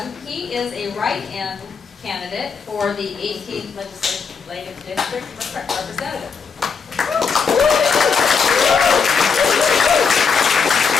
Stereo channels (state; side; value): quieter; right; 5.7 dB